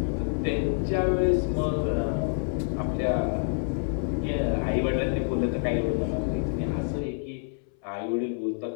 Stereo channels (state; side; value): silent; right; 60 dB below the other